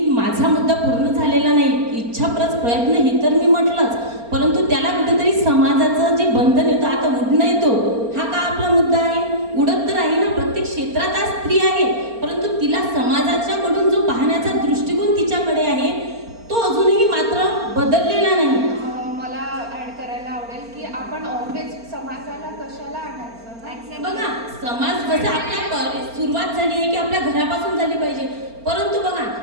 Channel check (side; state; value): left; late; 4.3 ms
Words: माझा मुद्दा पूर्ण झालेला नाही. इच्छा प्लस प्रयत्न हे तर मी म्हटलंच, परंतु त्याला कुठेतरी समाजाचं जे बंधन येतं, आता उडणं येतो, हा का आपला मुद्दा आहे. उडत तर आहे ना, प्रत्येक क्षेत्रात आज स्त्री आहे, परंतु तिला समाजाच्याकडून जो पाहण्याचा दृष्टिकोन तिच्याकडे आहे तो अजूनही मात्र बदललेला नाही. मला ॲड करायला आवडेल की आपण ऑलवेज समाजाला कशाला आणायचं. बघा, समाज जसं आपल्या सुरुवात झाली आहे की आपल्या घरापासून झाली पाहिजे, परंतु बघा